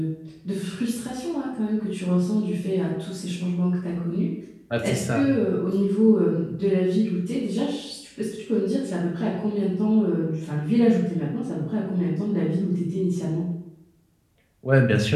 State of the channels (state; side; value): identical; both; correlation 1.00